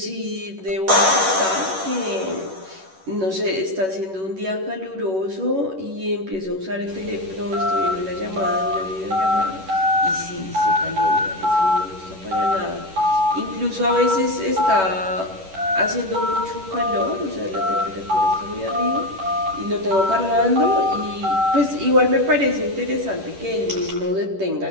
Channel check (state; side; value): late; left; 11 ms